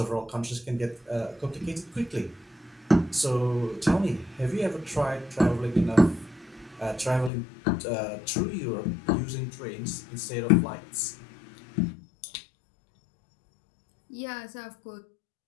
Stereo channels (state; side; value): drops out; right; at 7.3 s